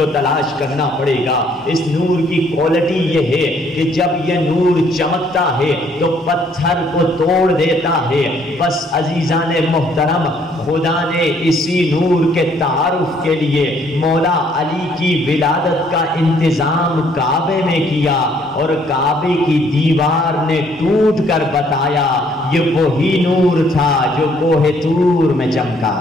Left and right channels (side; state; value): both; normal; correlation 0.65